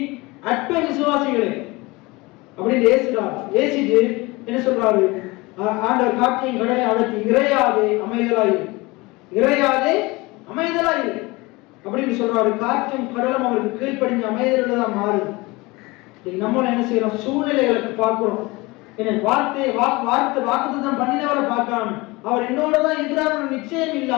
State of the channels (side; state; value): right; quieter; 23.2 dB